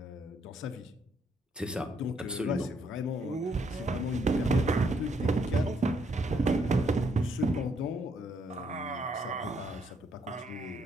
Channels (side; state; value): both; normal; correlation 0.72